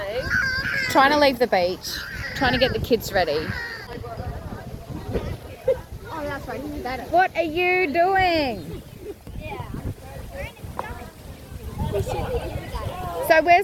Trying to leave the beach, trying to get the kids ready. Oh, that's right. What are you doing? So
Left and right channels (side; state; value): both; identical; correlation 1.00